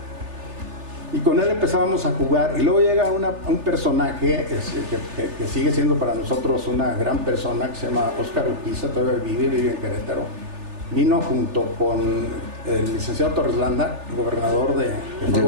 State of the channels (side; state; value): left; late; 3.4 ms